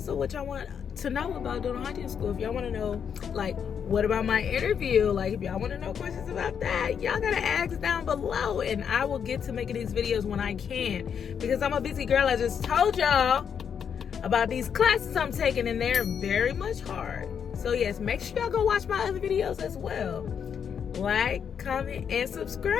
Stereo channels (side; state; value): right; quieter; 7.5 dB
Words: of what y'all want to know about dental hygiene school. If y'all want to know, like, what about my interview? Like, if y'all want to know questions about that, y'all gotta ask down below, and I will get to making these videos when I can, because I'm a busy girl. I just told y'all about these classes I'm taking, and they're very much hard. So yes, make sure y'all go watch my other videos as well. Like, comment, and